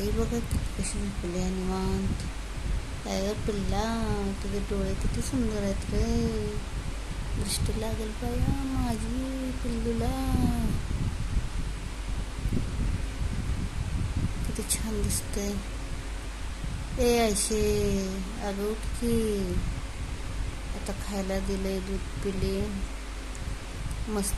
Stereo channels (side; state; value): both; identical; correlation 1.00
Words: बघा कशी झोपली आहे निवांत. काय ग पिल्ला, तुझे डोळे किती सुंदर आहेत रे. दृष्टी लागेल पाया माझी पिल्लूला. किती छान दिसतंय. ए आयशे, अगं उठ की. आता खायला दिलंय, दूध पिली,